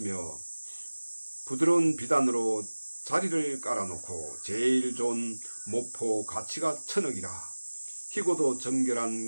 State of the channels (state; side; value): inverted; both; correlation -1.00